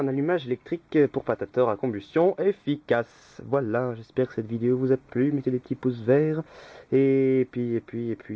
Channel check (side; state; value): both; identical; correlation 1.00